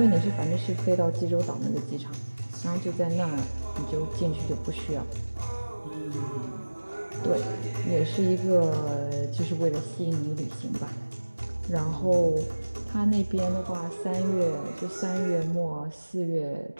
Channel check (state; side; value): inverted; both; correlation -1.00